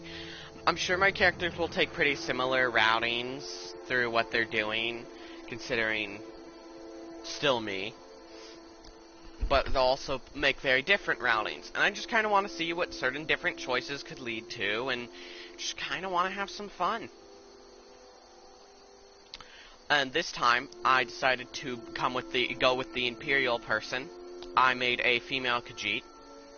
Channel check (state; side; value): identical; both; correlation 1.00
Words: I'm sure my characters will take pretty similar routings through what they're doing, considering still me. But they'll also make very different routings. And I just kind of want to see what certain different choices could lead to, and just kind of want to have some fun. And this time, I decided to go with the Imperial person. I made a female Khajiit.